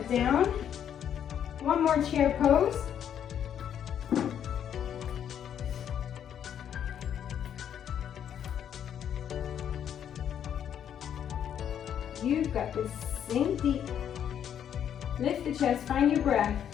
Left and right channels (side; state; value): right; quieter; 9.2 dB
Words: down. One more chair pose. You've got this. Sink deep. Lift the chest, find your breath.